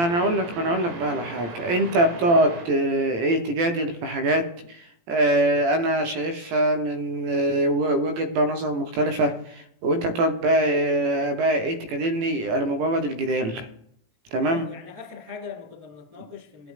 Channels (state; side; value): late; left; 18 ms